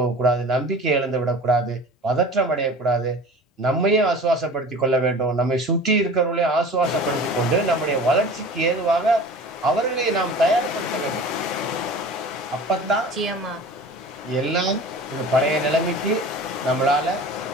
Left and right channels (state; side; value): normal; both; correlation 0.39